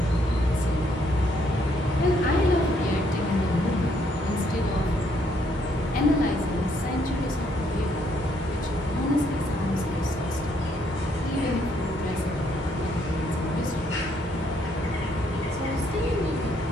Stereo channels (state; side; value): normal; both; correlation 0.70